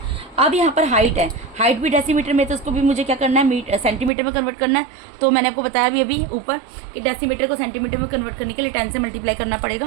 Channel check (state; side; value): drops out; left; at 4.1 s